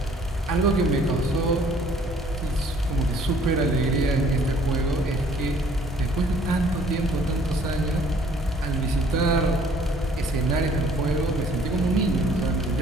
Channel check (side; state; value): both; normal; correlation 0.58